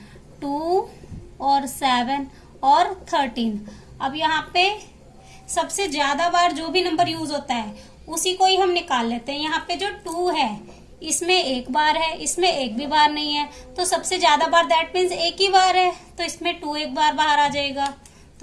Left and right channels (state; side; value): identical; both; correlation 1.00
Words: 2 और 7 और 13। अब यहाँ पे सबसे ज्यादा बार जो भी नंबर यूज होता है उसी को ही हम निकाल लेते हैं। यहाँ पे जो 2 है इसमें एक बार है, इसमें एक भी बार नहीं है, तो सबसे ज्यादा बार दैट मीन्स एक ही बार है, तो इसमें 2 एक बार बाहर आ जाएगा,